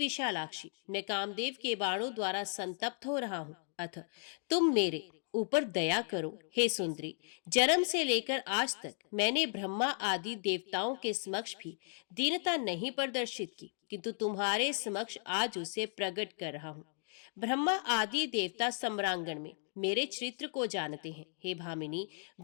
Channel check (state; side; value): silent; right; 54 dB below the other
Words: मैं कामदेव के बाणों द्वारा संतप्त हो रहा हूँ, अतः तुम मेरे ऊपर दया करो। हे सुंदरी, जन्म से लेकर आज तक मैंने ब्रह्मा आदि देवताओं के समक्ष भी दीनता नहीं प्रदर्शित की, किंतु तुम्हारे समक्ष आज उसे प्रकट कर रहा हूँ। ब्रह्मा आदि देवता सम्रांगण में मेरे चरित्र को जानते हैं। हे भामिनी,